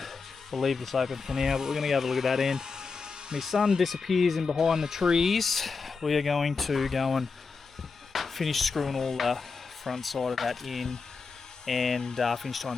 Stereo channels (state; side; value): quieter; right; 4.7 dB